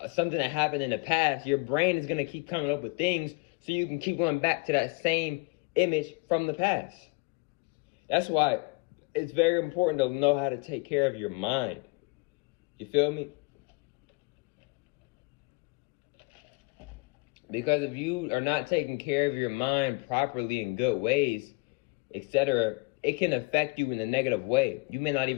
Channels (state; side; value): quieter; right; 29.2 dB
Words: something that happened in the past, your brain is going to keep coming up with things so you can keep going back to that same image from the past. That's why it's very important to know how to take care of your mind. You feel me? Because if you are not taking care of your mind properly in good ways, etc., it can affect you in a negative way. You may not